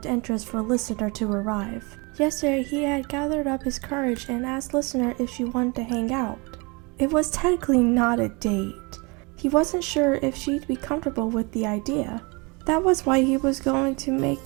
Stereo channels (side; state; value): left; quieter; 28.7 dB